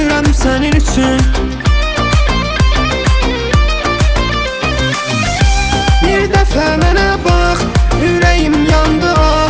sənin üçün. Bir dəfə mənə bax, ürəyim yandı ah.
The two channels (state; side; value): identical; both; correlation 1.00